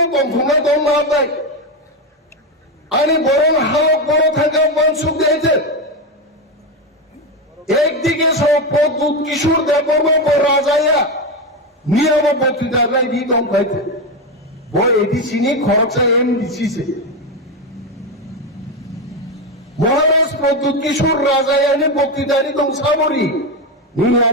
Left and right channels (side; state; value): both; normal; correlation 0.12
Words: কমখমা দম মাবাই আনি বরং হালক বড় থাকা ওয়ানসুকদি আছে একদিকে সব প্রদ্যুৎ কিশোর দেববর্মা রাজায়া নিয়ম বক্তৃতায় দিয়ে দম পাইছে বই এটি চিনি খরচা এম দিছিছে মহারাজ প্রদ্যুৎ কিশোর রাজায়ানি বক্তৃতারি দম সাবরি নিয়ে